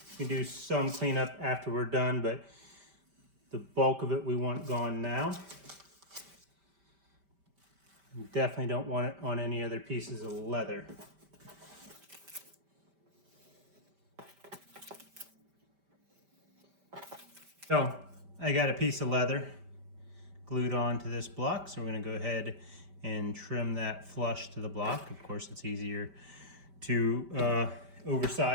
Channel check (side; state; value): left; late; 5.1 ms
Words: You can do some cleanup after we're done, but the bulk of it we want gone now. You definitely don't want it on any other pieces of leather. So I got a piece of leather glued onto this block, so we're going to go ahead and trim that flush to the block. Of course, it's easier to